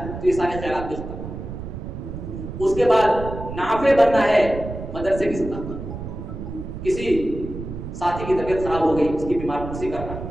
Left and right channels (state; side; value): noise; right; rumble, 8 dB below the sound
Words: تو یہ سارے خیالات بھی ختم. اس کے بعد نافع بننا ہے مدرسے کی سطح پر. کسی ساتھی کی طبیعت خراب ہو گئی، اس کی بیمار پرسی کرنا.